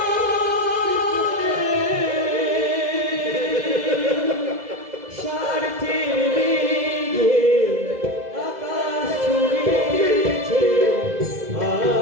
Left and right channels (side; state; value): left; late; 2.0 ms